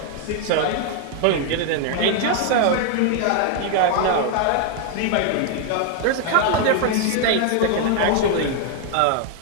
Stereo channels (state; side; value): different; both; correlation 0.00